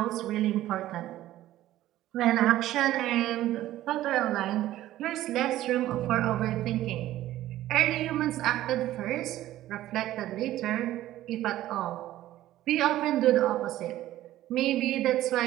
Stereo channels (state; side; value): quieter; left; 14.3 dB